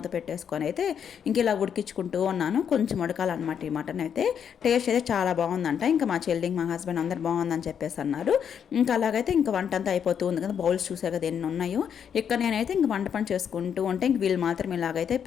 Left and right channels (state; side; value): quieter; right; 8.0 dB